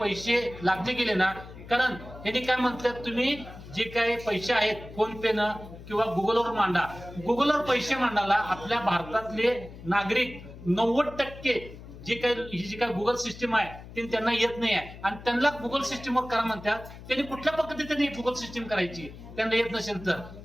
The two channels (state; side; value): noise; left; hum, 15 dB below the sound